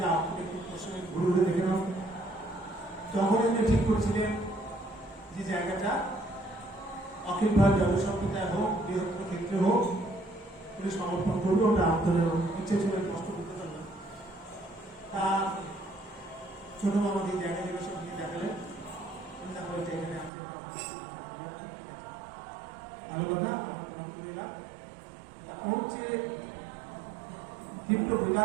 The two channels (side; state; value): left; drops out; at 20.3 s